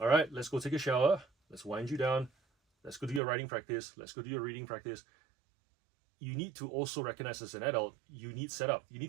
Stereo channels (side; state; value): left; drops out; at 3.2 s